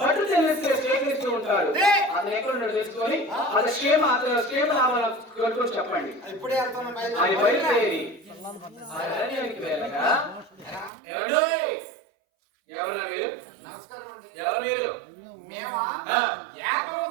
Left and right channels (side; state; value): left; drops out; at 10.9 s